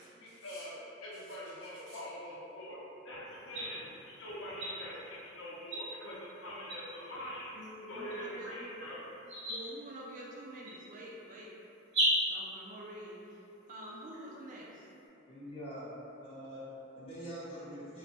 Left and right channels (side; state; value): both; normal; correlation 0.02